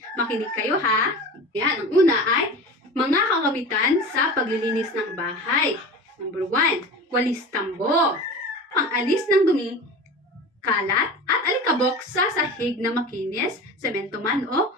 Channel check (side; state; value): both; normal; correlation 0.33